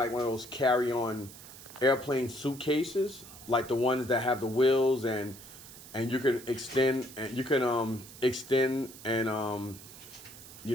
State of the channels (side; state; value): right; noise; hiss, 17 dB below the sound